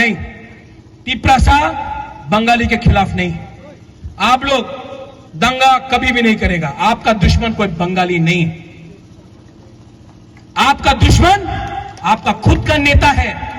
तिपरासा बंगाली के खिलाफ नहीं। आप लोग दंगा कभी भी नहीं करेगा। आपका दुश्मन कोई बंगाली नहीं, आपका दुश्मन आपका खुद का नेता है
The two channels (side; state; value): both; identical; correlation 1.00